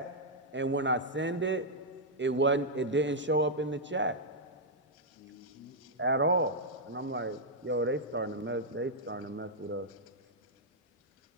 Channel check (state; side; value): normal; both; correlation -0.06